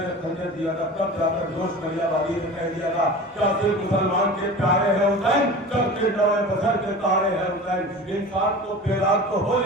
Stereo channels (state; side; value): normal; both; correlation 0.36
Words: खंजर दिया था, तब जाकर जोश नैया बागी ने कह दिया था, क्या सिर्फ मुसलमान के प्यारे हैं हुसैन, चलते नवे बसर के तारे हैं हुसैन। इंसान को बेदाग तो हो